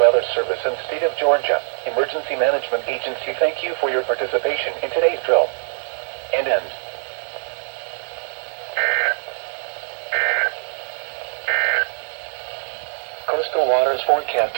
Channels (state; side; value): silent; left; 64 dB below the other